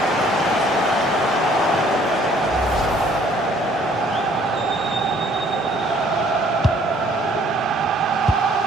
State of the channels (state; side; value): normal; both; correlation 0.60